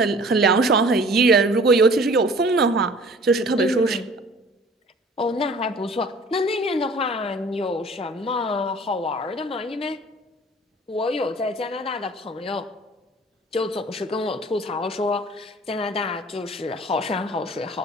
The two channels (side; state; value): both; normal; correlation 0.49